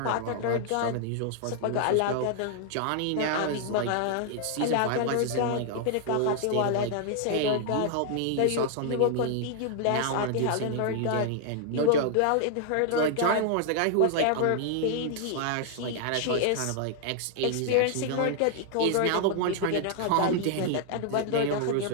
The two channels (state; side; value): different; both; correlation 0.00